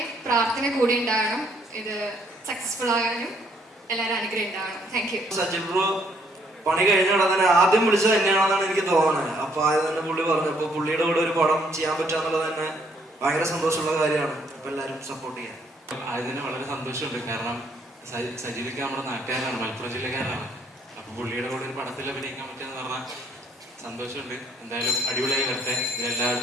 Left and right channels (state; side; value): normal; both; correlation 0.67